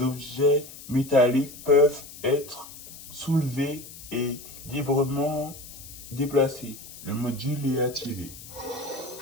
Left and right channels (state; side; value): noise; left; hiss, 15 dB below the sound